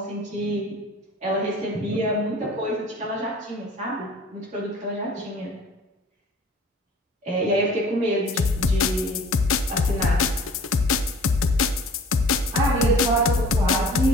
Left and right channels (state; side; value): normal; both; correlation 0.47